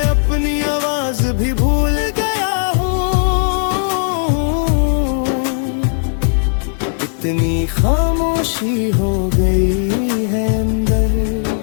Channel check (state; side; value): silent; right; digital silence